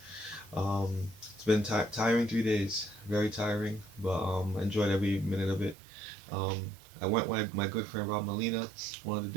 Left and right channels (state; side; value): drops out; left; at 5.8 s